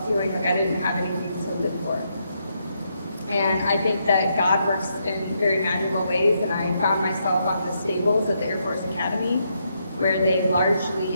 feeling like I didn't have anything to live for. And I think that God works in very magical ways, and I found myself on the stables at the Air Force Academy, where they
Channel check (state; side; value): inverted; both; correlation -0.79